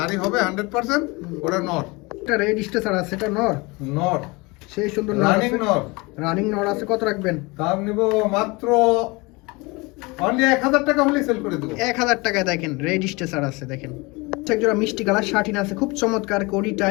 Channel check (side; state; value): right; quieter; 25.5 dB